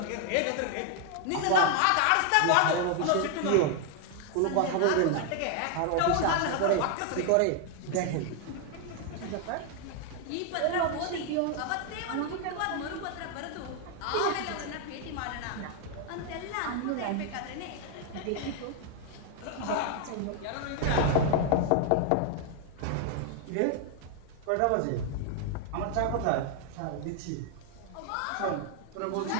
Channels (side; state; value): both; different; correlation 0.00